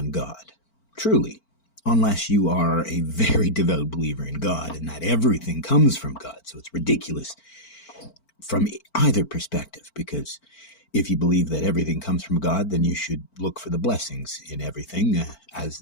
God, truly, unless you are a very devout believer in God and that everything comes from God. So it's ridiculous from either perspective, because if you believe that everything comes from God, then you should look for the blessings in everything, as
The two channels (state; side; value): late; right; 4.4 ms